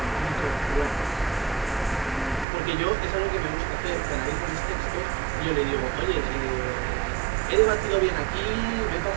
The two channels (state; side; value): drops out; left; at 2.5 s